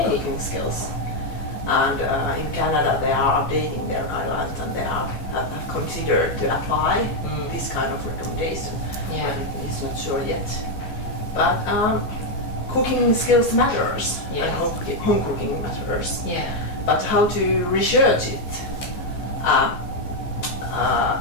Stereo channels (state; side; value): late; right; 14 ms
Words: cooking skills. And in Canada, they are updating their guidelines, and they have considered to apply this kind of recommendation. But it's not sure yet. But cooking skills matters, and home cooking matters. But how to research it?